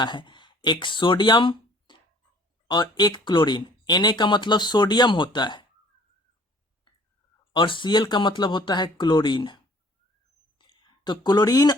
है, एक सोडियम और एक क्लोरीन, Na का मतलब सोडियम होता है और Cl का मतलब होता है क्लोरीन। तो क्लोरीन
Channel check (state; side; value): normal; both; correlation 0.54